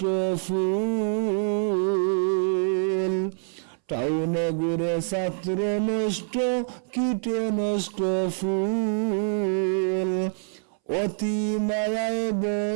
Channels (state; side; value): silent; left; 61 dB below the other